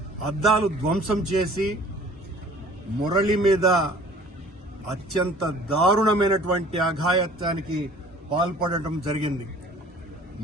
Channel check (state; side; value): normal; both; correlation 0.50